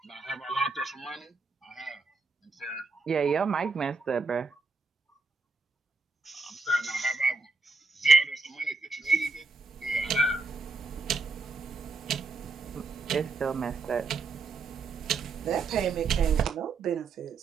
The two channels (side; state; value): left; quieter; 4.0 dB